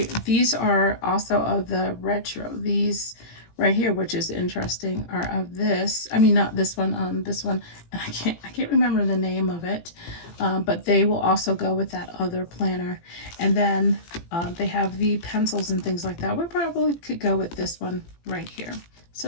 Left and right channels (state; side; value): late; right; 18 ms